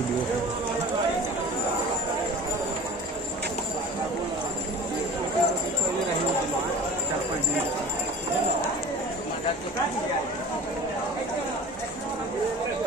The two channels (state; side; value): normal; both; correlation 0.40